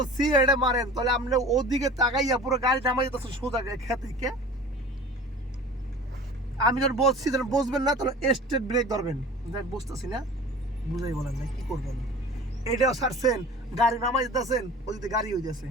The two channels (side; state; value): both; normal; correlation 0.40